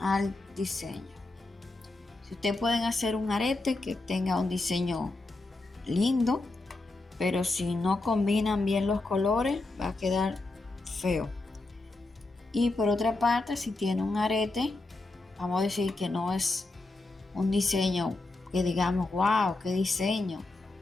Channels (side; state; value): right; quieter; 3.1 dB